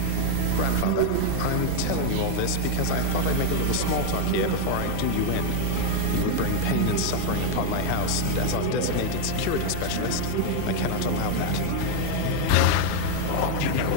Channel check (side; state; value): both; different; correlation 0.00